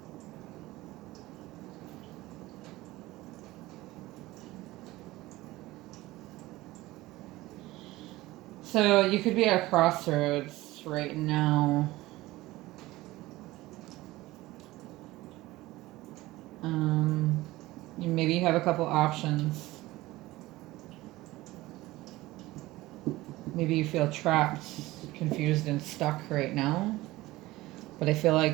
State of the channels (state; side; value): quieter; left; 18.4 dB